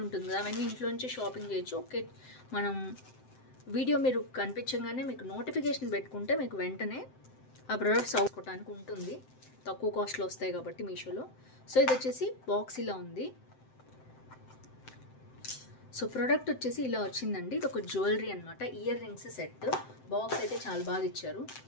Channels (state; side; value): late; right; 7.7 ms